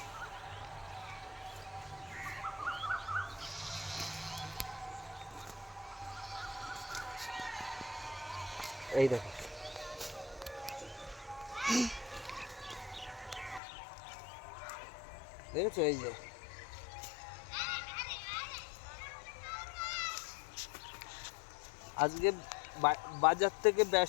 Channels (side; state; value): right; drops out; at 13.6 s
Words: এই দেখো, দেখেছো, এই যে। আজকে বাজার থেকে